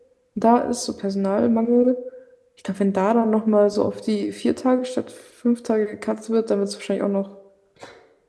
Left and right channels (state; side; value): identical; both; correlation 1.00